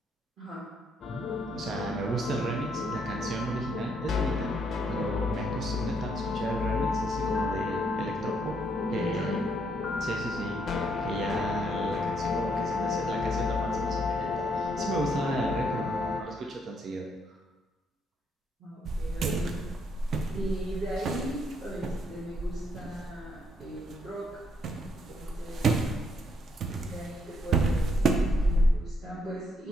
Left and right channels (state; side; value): normal; both; correlation 0.72